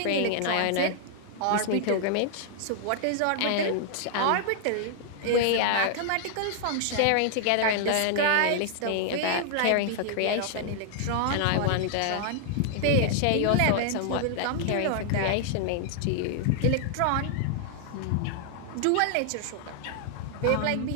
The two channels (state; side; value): different; both; correlation -0.01